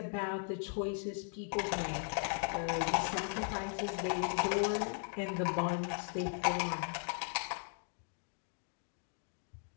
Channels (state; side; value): silent; right; 53 dB below the other